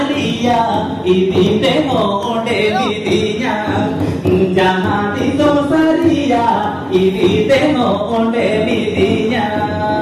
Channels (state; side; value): identical; both; correlation 1.00